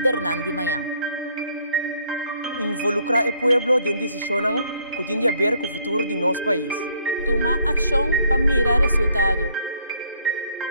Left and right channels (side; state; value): both; inverted; correlation -0.66